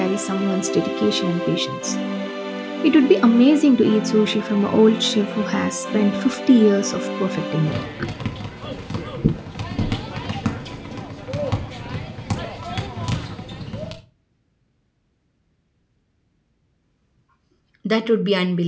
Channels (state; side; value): identical; both; correlation 1.00